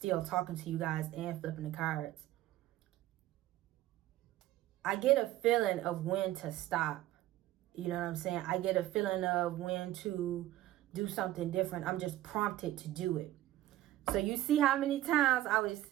talking to you guys and flipping the cards. I get a feeling of when to stop. You know what I'm saying? I get a feeling of when to do something different. I'm just prompted to do it. So you see how many times I was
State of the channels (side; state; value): left; quieter; 14.7 dB